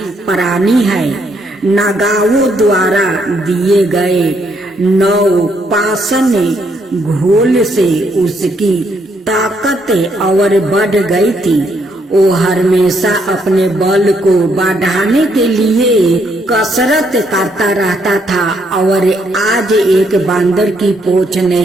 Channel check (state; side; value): normal; both; correlation 0.73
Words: प्राणी है। नागाओं द्वारा दिए गए 9 पाषाण घोल से उसकी ताकत और बढ़ गई थी। वो हमेशा अपने बल को बढ़ाने के लिए कसरत करता रहता था और आज एक बांदर की पोंछ